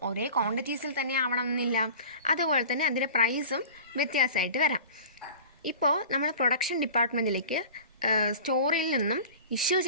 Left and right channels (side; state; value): both; inverted; correlation -0.39